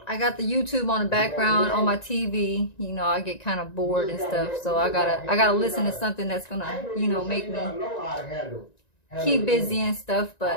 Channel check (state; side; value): late; right; 1.9 ms